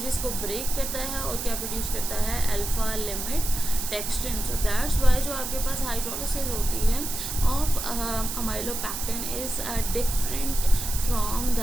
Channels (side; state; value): right; noise; hiss, 5 dB below the sound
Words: को ब्रेक करता है और क्या प्रोड्यूस करता है, alpha limit dextrin. So that's why जो आपके पास हाइड्रोलिसिस होती है of amylopectin is different from